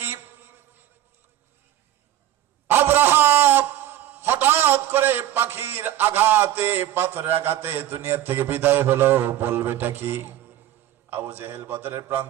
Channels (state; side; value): quieter; left; 12.7 dB